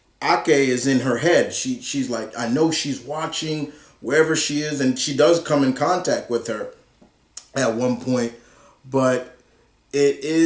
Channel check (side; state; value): both; identical; correlation 1.00